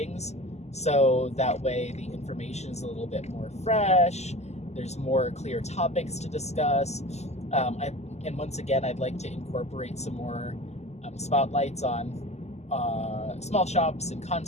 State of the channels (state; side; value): late; right; 0.32 ms